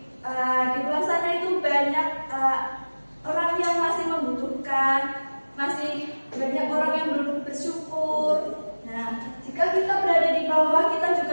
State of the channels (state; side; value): inverted; both; correlation -1.00